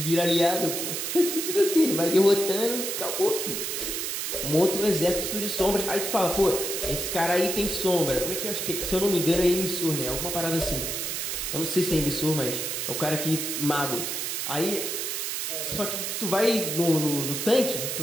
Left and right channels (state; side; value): noise; right; hiss, 2 dB below the sound